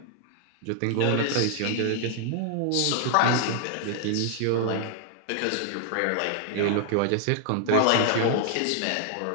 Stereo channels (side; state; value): both; different; correlation 0.00